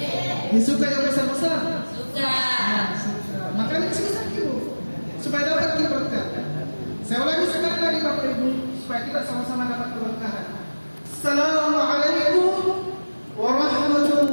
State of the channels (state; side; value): inverted; both; correlation -1.00